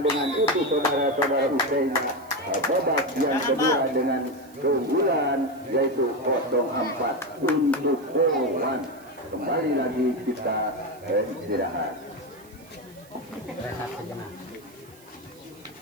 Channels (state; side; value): noise; right; hiss, 26 dB below the sound